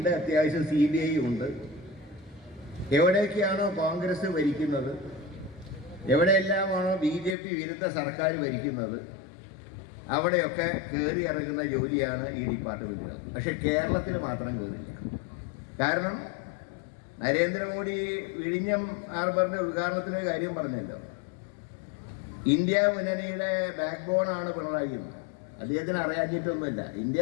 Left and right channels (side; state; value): right; drops out; at 7.4 s